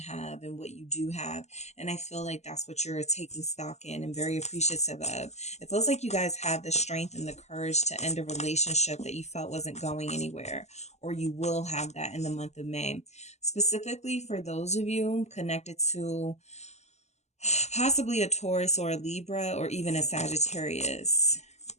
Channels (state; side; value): late; right; 0.33 ms